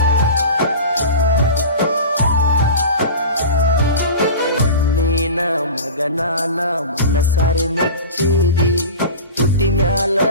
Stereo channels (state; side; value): inverted; both; correlation -0.32